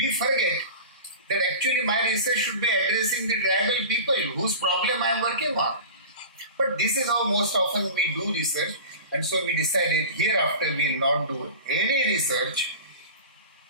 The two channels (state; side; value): inverted; both; correlation -0.33